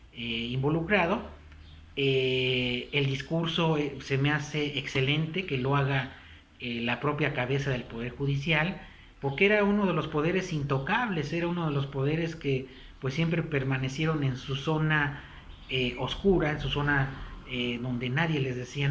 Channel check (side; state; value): both; identical; correlation 1.00